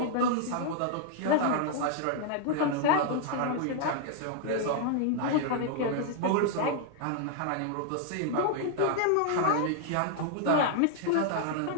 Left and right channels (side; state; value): both; different; correlation 0.00